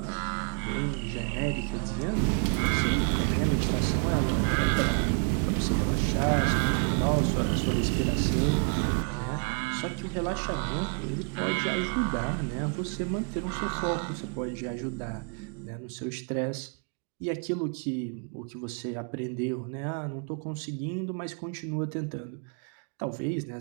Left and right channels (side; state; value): left; quieter; 37.3 dB